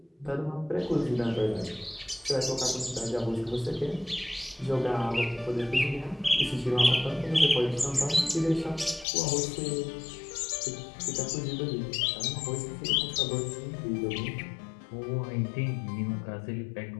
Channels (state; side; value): drops out; right; at 9.1 s